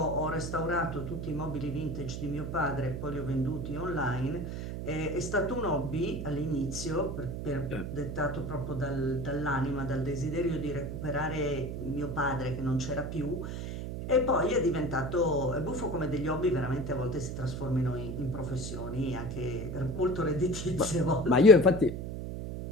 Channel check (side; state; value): right; noise; hum, 5 dB below the sound